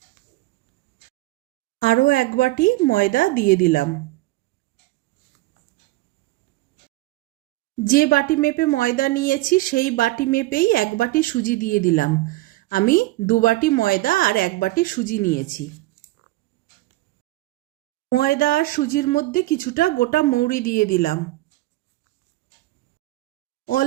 আরও 1 বাটি ময়দা দিয়ে দিলাম। যে বাটি মেপে ময়দা নিয়েছি সেই বাটি মেপেই 1 বাটি সুজি দিয়ে দিলাম। আমি 2 বাটি ময়দা আর 1 বাটি সুজি নিয়েছি। ময়দা আর সুজির মধ্যে কিছুটা গোটা মৌরি দিয়ে দিলাম।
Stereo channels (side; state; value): left; quieter; 18.8 dB